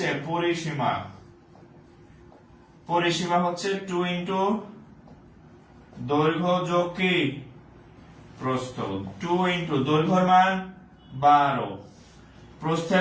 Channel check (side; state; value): both; identical; correlation 1.00